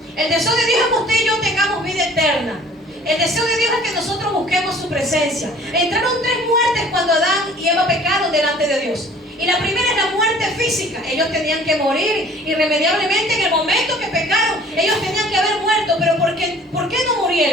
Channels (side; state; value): both; normal; correlation 0.51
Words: El deseo de Dios es que usted y yo tengamos vida eterna. El deseo de Dios es que nosotros busquemos su presencia. Entraron 3 muertes cuando Adán y Eva pecaron delante de Dios. Y la primera es la muerte física. Ellos tenían que morir irremediablemente en el momento que pecaron. Ellos tenían que haber muerto. Pero ¿por qué no